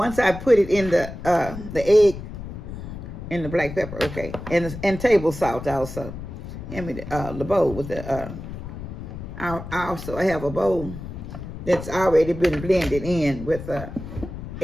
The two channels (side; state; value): left; noise; rumble, 10 dB below the sound